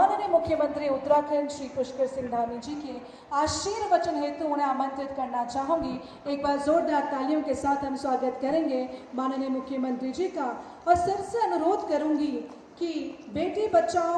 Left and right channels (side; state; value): both; identical; correlation 1.00